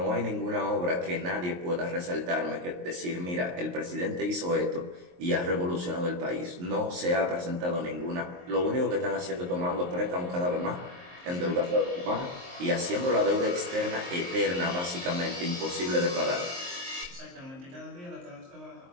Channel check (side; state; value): left; late; 23 ms